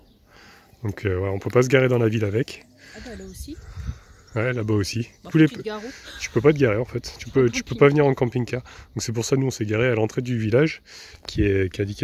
Donc on peut pas se garer dans la ville avec. Ah bah là aussi. Ouais, là-bas aussi. Bah, tu peux pas te garer en fait. Tu peux pas venir en camping-car. Donc c'est pour ça nous on s'est garé à l'entrée du village qui est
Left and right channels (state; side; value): identical; both; correlation 1.00